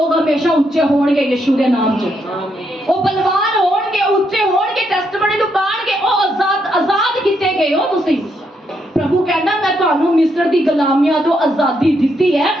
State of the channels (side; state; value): both; normal; correlation 0.77